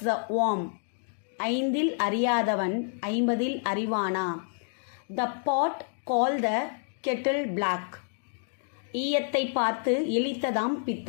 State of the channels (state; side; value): silent; right; digital silence